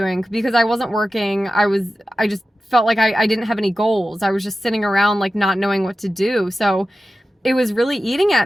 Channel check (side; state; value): both; normal; correlation 0.94